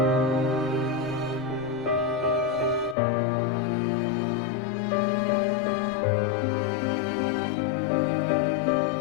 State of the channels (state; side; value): drops out; right; at 3.0 s